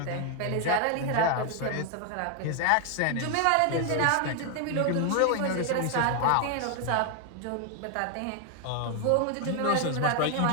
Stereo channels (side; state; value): both; different; correlation 0.00